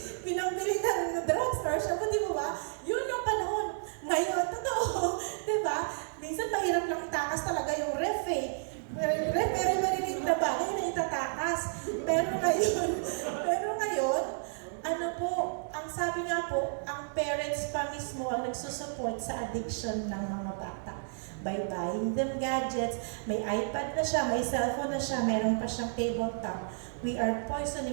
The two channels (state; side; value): silent; left; digital silence